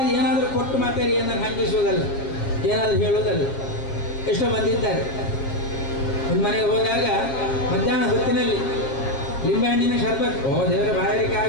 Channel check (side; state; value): right; late; 7.3 ms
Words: ಏನಾದರೂ ಕೊಟ್ಟು ಮಾತಾಡಿ ಏನನ್ನು ಹಂಗಿಸುವುದಲ್ಲ, ಏನಾದರೂ ಹೇಳುವುದಲ್ಲ. ಎಷ್ಟೋ ಮಂದಿ ಇದ್ದಾರೆ. ಒಂದು ಮನೆಗೆ ಹೋದಾಗ ಮಧ್ಯಾಹ್ನ ಹೊತ್ತಿನಲ್ಲಿ ಲಿಂಬೆಹಣ್ಣಿನ ಶರ್ಬತ್, ಓ ದೇವರ ಬಾಯಾರಿಕೆ